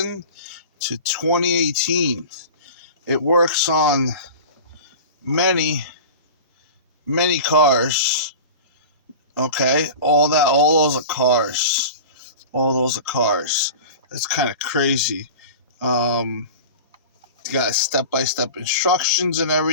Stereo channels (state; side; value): inverted; both; correlation -0.35